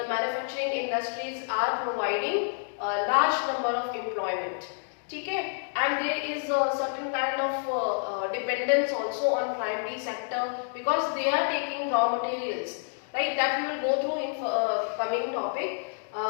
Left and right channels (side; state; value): right; silent; digital silence